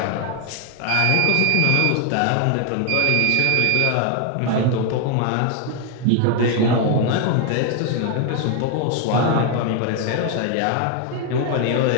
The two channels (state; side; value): different; both; correlation 0.01